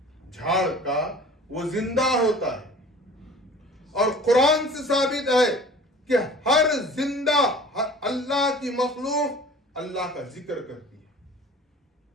جھاڑ کا وہ زندہ ہوتا ہے، اور قرآن سے ثابت ہے کہ ہر زندہ اللہ کی مخلوق اللہ کا ذکر کرتی ہے۔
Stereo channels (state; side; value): normal; both; correlation 0.44